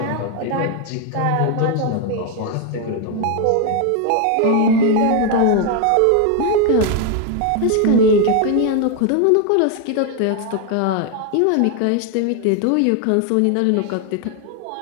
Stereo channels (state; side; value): different; both; correlation 0.01